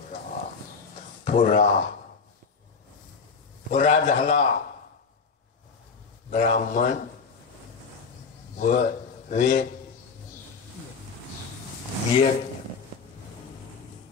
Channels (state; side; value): quieter; right; 5.2 dB